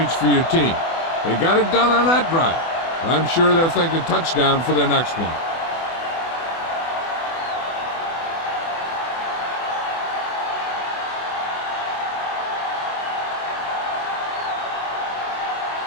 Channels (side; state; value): right; late; 24 ms